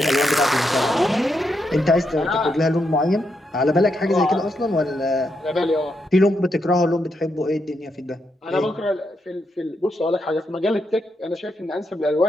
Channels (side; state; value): both; normal; correlation 0.81